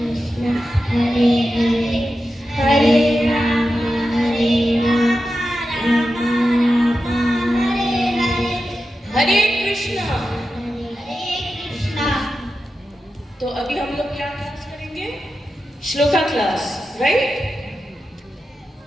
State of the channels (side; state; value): both; normal; correlation 0.91